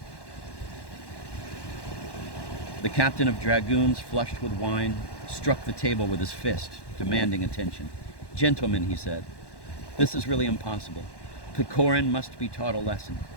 The captain of dragoons, flushed with wine, struck the table with his fist, demanding attention. "Gentlemen," he said, "this is really impossible. Pechorin must be taught a lesson.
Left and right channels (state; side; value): late; right; 1.1 ms